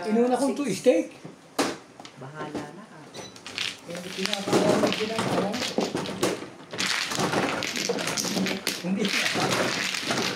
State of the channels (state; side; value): identical; both; correlation 1.00